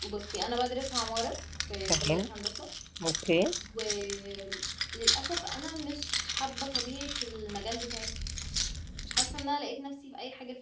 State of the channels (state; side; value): identical; both; correlation 1.00